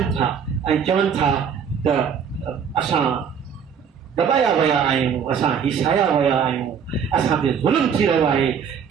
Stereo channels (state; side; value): quieter; left; 7.2 dB